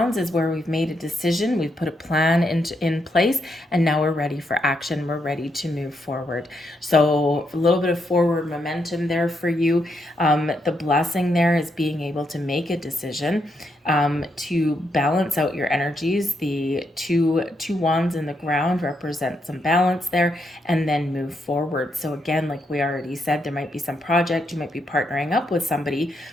is where we've made a decision, we've put a plan in place, and now we're ready for action. We're ready to move forward. So a little bit of forward momentum there for you. The blessing there is being able to make a decision, to balance out your energies. The two wands in the ground represent some balance there, and then move forward. So again, like we already said, there might be some project, you might be partnering up with somebody,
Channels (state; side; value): normal; both; correlation 0.79